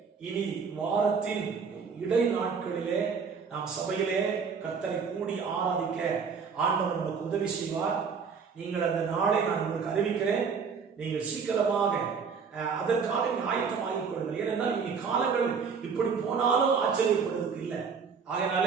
இனி வாரத்தின் இடை நாட்களிலே நாம் சபையிலே கர்த்தரை கூடி ஆராதிக்க ஆண்டவர் நமக்கு உதவி செய்வார். நீங்கள் அந்த நாளை நான் உங்களுக்கு அறிவிக்கிறேன். நீங்கள் சீக்கிரமாக அதற்காக ஆயத்தமாகிக் கொள்ளுங்கள். ஏனென்றால் இனி காலங்கள் இப்படி போனாலும் ஆச்சரியப்படுவதற்கு இல்லை.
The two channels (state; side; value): quieter; left; 5.8 dB